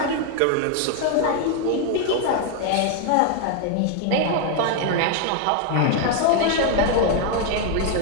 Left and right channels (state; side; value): different; both; correlation 0.01